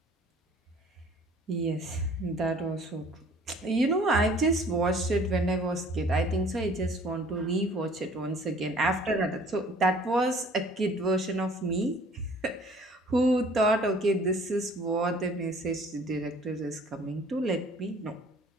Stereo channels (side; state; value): both; normal; correlation 0.53